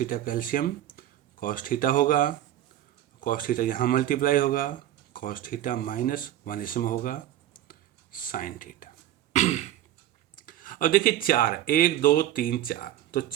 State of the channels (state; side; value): quieter; left; 12.6 dB